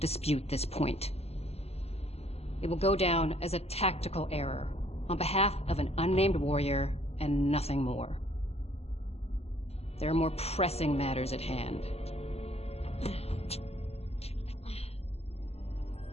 this point. It will go down as a tactical error on behalf of an unnamed warrior and nothing more. There are more pressing matters at hand.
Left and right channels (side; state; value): right; late; 0.30 ms